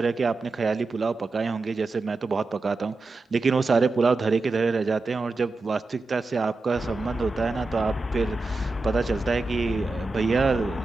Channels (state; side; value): quieter; left; 3.4 dB